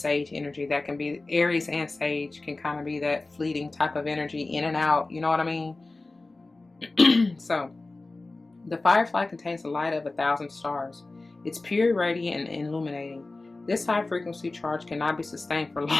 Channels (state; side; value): quieter; right; 3.2 dB